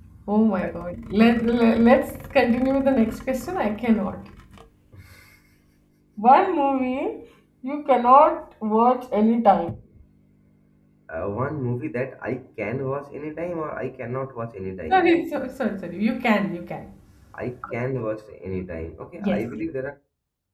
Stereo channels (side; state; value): both; identical; correlation 1.00